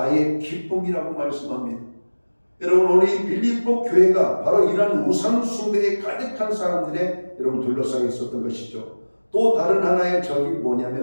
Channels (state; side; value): inverted; both; correlation -1.00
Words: 기쁨이라고 말씀합니다. 여러분 오늘 이 빌립보 교회가 바로 이러한 우상 숭배에 가득한 사람들의 여러분 둘러싸여 있었던 것이죠. 또 다른 하나의 적이